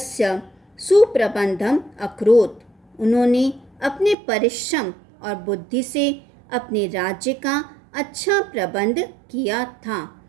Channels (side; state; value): left; drops out; at 4.2 s